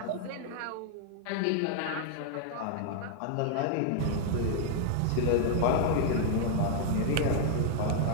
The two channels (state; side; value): different; both; correlation 0.00